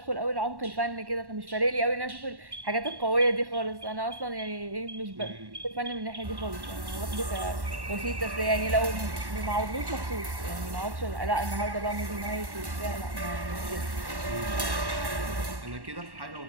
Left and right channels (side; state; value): left; late; 1.1 ms